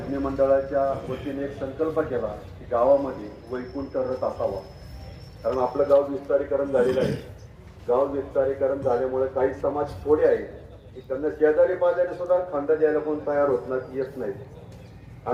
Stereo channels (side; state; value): both; identical; correlation 1.00